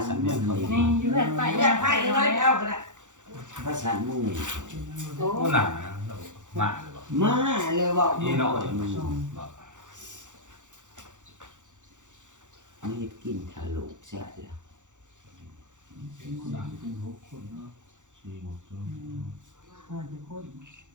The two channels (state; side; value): late; left; 0.86 ms